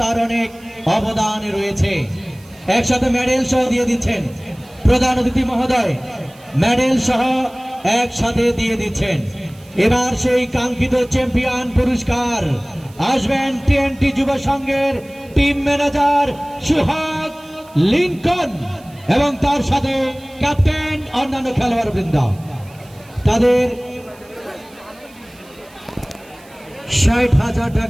তার অনেক অবদান রয়েছে। একসাথে মেডেল সহ দিয়ে দিচ্ছেন প্রধান অতিথি মহোদয়, মেডেল সহ একসাথে দিয়ে দিচ্ছেন। এবার সেই কাঙ্ক্ষিত চ্যাম্পিয়ন পুরস্কার আসবেন টিএনটি যুব সংঘের টিম ম্যানেজার সুহাগ লিঙ্কন এবং তার সাথে ক্যাপ্টেন অন্যান্য খেলোয়াড় বৃন্দ। তাদের 60,000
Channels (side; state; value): right; noise; hiss, 26 dB below the sound